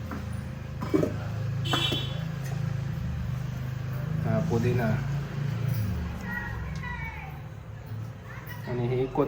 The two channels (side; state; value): both; identical; correlation 1.00